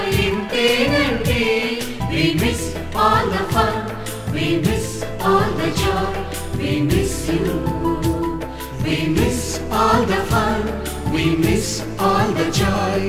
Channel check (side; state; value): both; identical; correlation 1.00